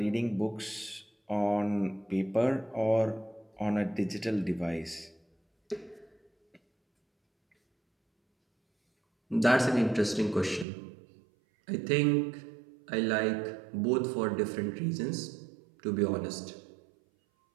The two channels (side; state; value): left; drops out; at 10.7 s